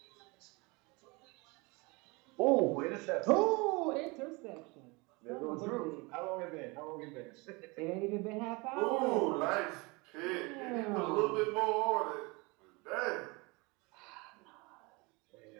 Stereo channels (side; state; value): left; quieter; 26.7 dB